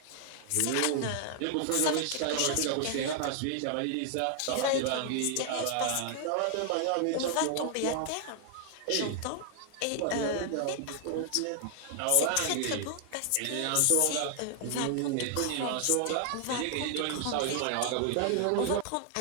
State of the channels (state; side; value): different; both; correlation 0.00